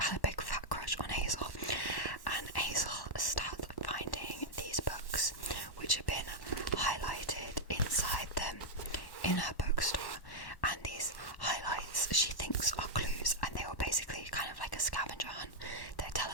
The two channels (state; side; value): late; right; 1.1 ms